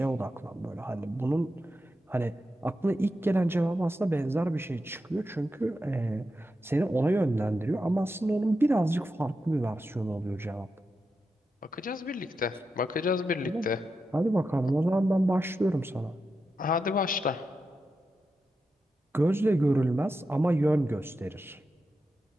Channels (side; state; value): both; normal; correlation 0.88